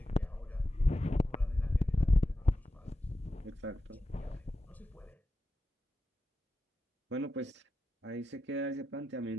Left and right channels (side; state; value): both; normal; correlation 0.90